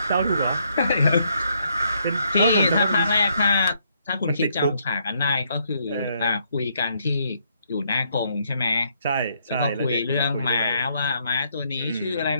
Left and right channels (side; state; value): both; inverted; correlation -0.72